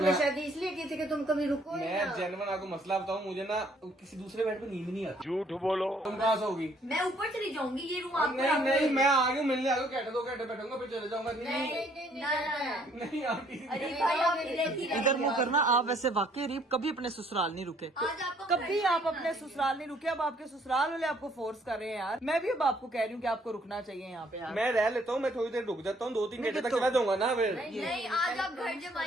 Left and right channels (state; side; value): normal; both; correlation 0.64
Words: शादी इसलिए की थी कि तुम कभी रुको ही मैं ना। जेन्युइन आपको मसला बताऊँ, मुझे ना किसी दूसरे बेड पे नींद नहीं आती। झूठ बोलो। तुम कहाँ सोगी? मैं ऊपर चली जाऊंगी, ये रूम आपको नहीं नहीं, मैं आ गया मिलने आ गया, घंटे 2 घंटे बैठूंगा फिर चले जाऊंगा। नहीं आती। अरे भाई आप इधर ही इधर मुंह करना। आप वैसे वाकई अरीब कभी अपने ससुराल नहीं रुके, आज आपको कभी आप अपने ससुराल नहीं रुके। अब आपके ससुराल वाले आपको फोर्स कर रहे हैं यार। मैं भी अब आपको कह रही हूँ कि आपको रुकना चाहिए यहाँ पे यार। मैं रह लेता हूँ, मैं थोड़ी देर रुक जाता हूँ, 2-3 घंटे तक चला जाऊंगा ना फिर। नहीं, आज आप घर